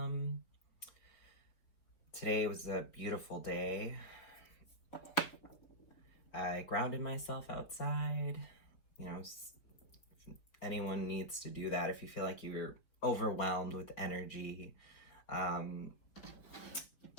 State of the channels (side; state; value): right; late; 4.3 ms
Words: Today was a beautiful day. I grounded myself outside. You know, anyone needs to do that if you feel like you're overwhelmed with energy.